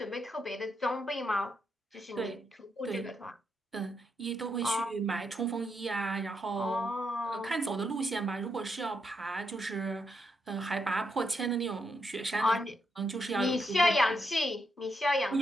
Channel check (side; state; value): both; normal; correlation 0.81